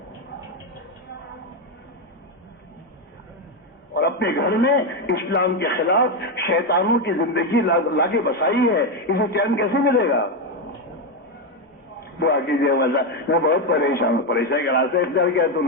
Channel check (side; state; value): both; normal; correlation 0.08